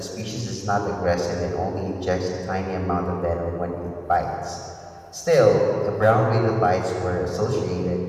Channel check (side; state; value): both; identical; correlation 1.00